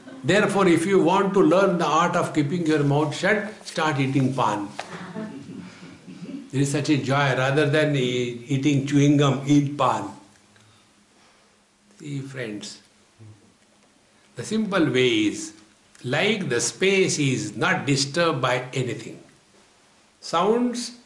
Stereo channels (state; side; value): identical; both; correlation 1.00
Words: Therefore, if you want to learn the art of keeping your mouth shut, start eating pan. There is such a joy. Rather than eating chewing gum, eat pan. See, friends, the simple way is, like the space is not disturbed by anything. Sounds